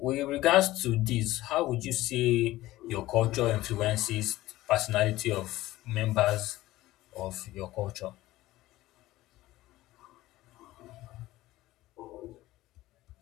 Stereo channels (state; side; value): quieter; right; 16.7 dB